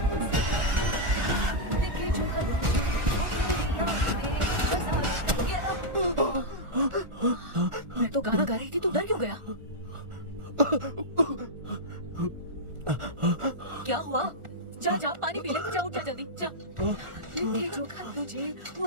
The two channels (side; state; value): left; late; 1.4 ms